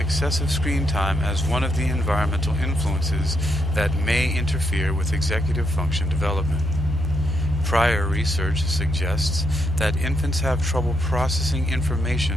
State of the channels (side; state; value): both; normal; correlation 0.78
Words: screen time as one of the environmental influences that may interfere with executive function development. Prior research suggests that infants have trouble processing